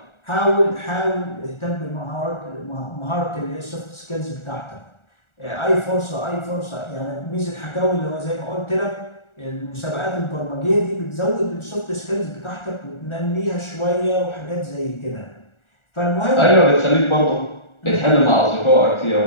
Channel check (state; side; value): late; right; 1.4 ms